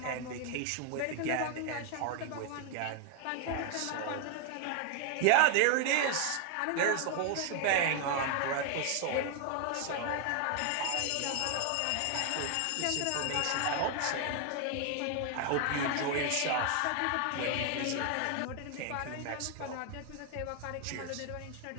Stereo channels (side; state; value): both; different; correlation 0.00